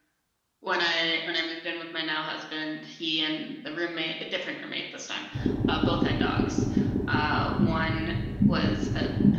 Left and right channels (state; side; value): identical; both; correlation 1.00